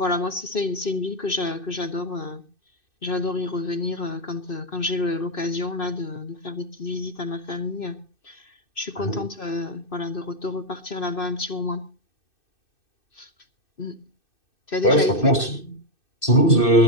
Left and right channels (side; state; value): right; late; 2.6 ms